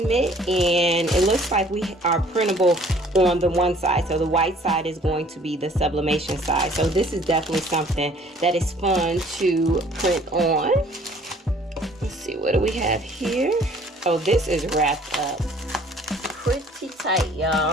mitt, and it looks like we are printable on the one side. So the white side is going to be the sublimation side. So this is definitely something that is fun to print on. Let's see, what do we have here? Oh, this is wrapped up pretty tight,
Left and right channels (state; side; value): normal; both; correlation 0.56